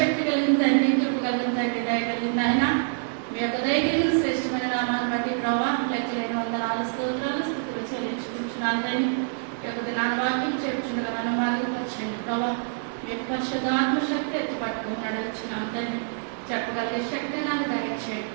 కలిగిన తండ్రి, కృప కలిగిన తండ్రి, దయ కలిగిన ఆయన, మీ యొక్క దయ కలిగిన శ్రేష్టమైన నామాన్ని బట్టి ప్రభావ లెక్కలేని వందనాలు స్తోత్రాలు స్థుతులు చెల్లించుకుంటున్నాను తండ్రి. ఈ యొక్క దినాన్ని వాక్యం చెప్పుచుండగా నన్ను బాధపరచండి ప్రభావ. మీ యొక్క పరిశుద్ధాత్మ శక్తి ఎత్తి పట్టుకుని నడిపించినాను తండ్రి. చెప్పగలిగే శక్తి నాకు దయచేయండి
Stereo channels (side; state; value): left; silent; digital silence